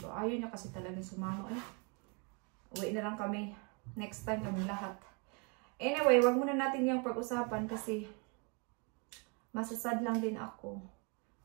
Ayaw niya kasi talaga sumama. Uwi na lang kami. Next time kami lahat. Anyway, wag muna natin yung pag-usapan kasi masasad lang din ako.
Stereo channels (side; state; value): left; quieter; 33.6 dB